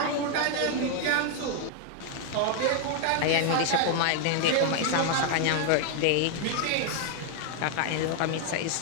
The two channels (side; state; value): both; different; correlation 0.00